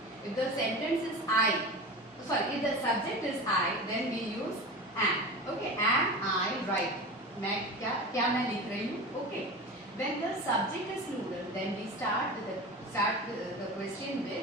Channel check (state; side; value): normal; both; correlation 0.30